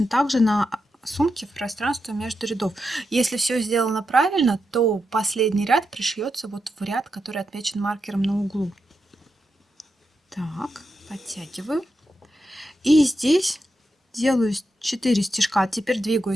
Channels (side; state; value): both; normal; correlation 0.86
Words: так же на сумке в пространство между рядов. Если все сделано правильно, то последний ряд пришьется вот в ряд, который отмечен маркером на углу. Так, подтягиваю. И здесь делаю 4 стежка. Теперь